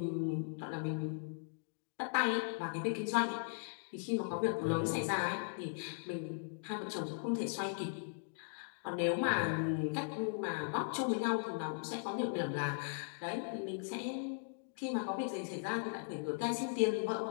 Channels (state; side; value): silent; right; digital silence